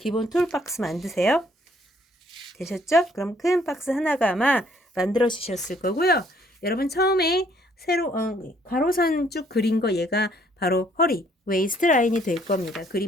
툴 박스 만드세요. 되셨죠? 그럼 큰 박스 하나가 아마 만들어 주셨을 거고요. 여러분 처음에 세로 가로선 쭉 그린 거 얘가 바로 허리 웨이스트 라인이 될 겁니다.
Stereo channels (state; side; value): normal; both; correlation 0.64